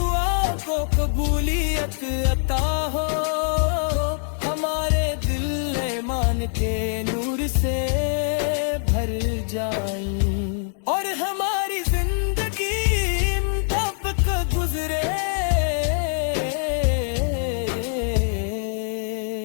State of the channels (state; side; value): silent; right; digital silence